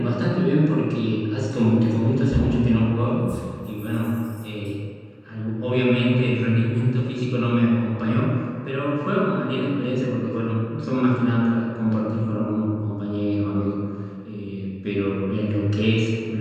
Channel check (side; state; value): both; identical; correlation 1.00